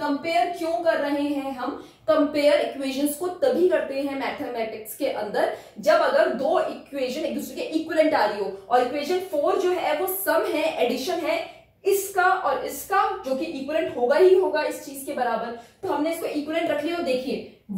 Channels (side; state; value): both; identical; correlation 1.00